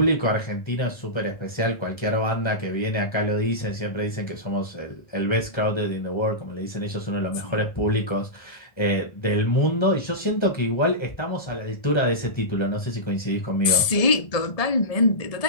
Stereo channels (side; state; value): right; late; 1.7 ms